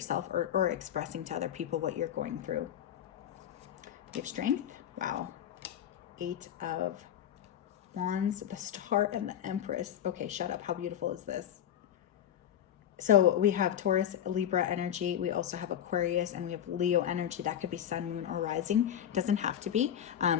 or expressing to other people what you're going through. You have strength. Wow. 8 of Wands, the Star, and the Empress. Okay, shut up. How beautiful is this? So we have Taurus, Libra energy. We also have Aquarius, and we have Leo energy. That could be sun, moon, or rising. Doesn't have to be.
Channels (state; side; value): quieter; right; 10.2 dB